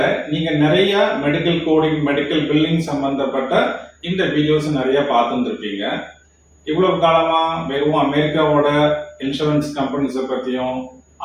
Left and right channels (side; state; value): both; identical; correlation 1.00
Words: நீங்க நிறைய மெடிக்கல் கோடிங் மெடிக்கல் பில்லிங் சம்பந்தப்பட்ட இந்த வீடியோஸ் நிறைய பார்த்துருப்பீங்க. இவ்வளவு காலமா வெறும் அமெரிக்காவோட இன்சூரன்ஸ் கம்பெனிஸை பத்தியும்